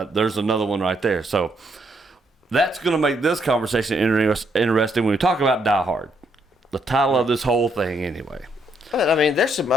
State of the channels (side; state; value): both; normal; correlation 0.74